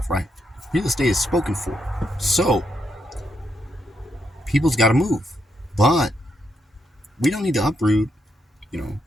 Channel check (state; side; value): normal; both; correlation 0.79